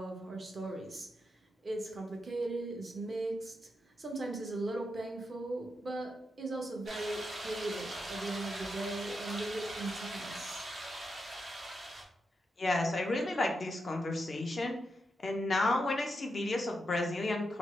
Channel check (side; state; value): both; normal; correlation 0.85